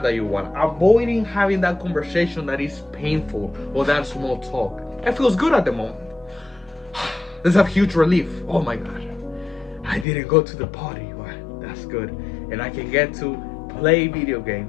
that you want, avoiding having that conversation that is painful or that small talk. It feels good at the moment. There's a huge relief. Oh my god, I didn't go to the party. Well, that's good, and I can get to play video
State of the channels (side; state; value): right; drops out; at 10.1 s